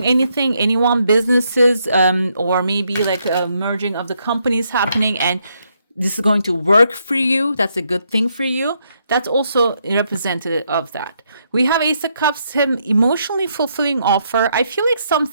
anything, anyone, businesses, or maybe like a merging of the companies happening, and this is going to work for you. That's a good thing for you. That's also representative of that. We have Ace of Cups, him emotionally fulfilling offer. I feel like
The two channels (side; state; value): both; inverted; correlation -0.76